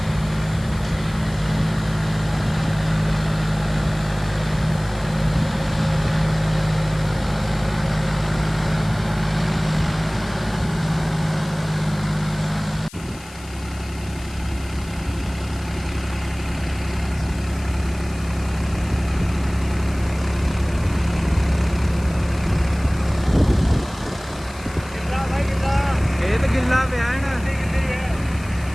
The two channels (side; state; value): left; noise; hiss, 20 dB below the sound